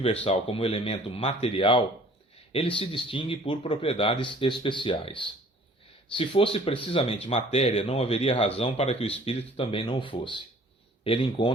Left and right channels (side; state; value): both; normal; correlation 0.52